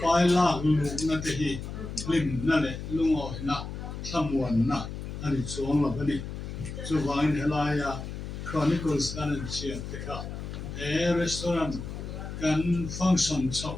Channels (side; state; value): left; noise; hum, 8 dB below the sound